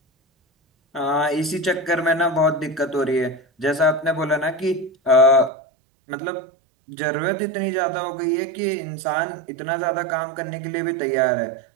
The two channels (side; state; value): left; drops out; at 5.5 s